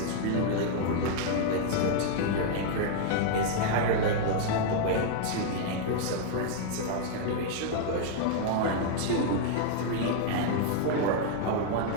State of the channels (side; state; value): both; different; correlation 0.00